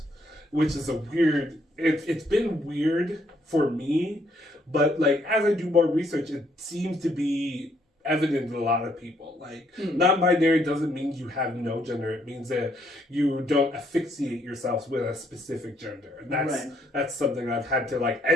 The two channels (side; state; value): both; normal; correlation 0.70